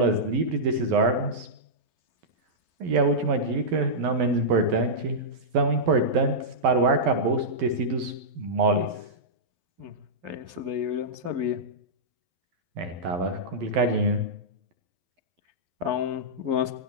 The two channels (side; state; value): left; late; 11 ms